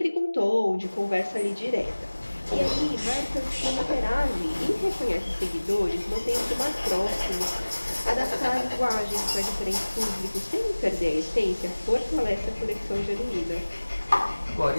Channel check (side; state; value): both; inverted; correlation -1.00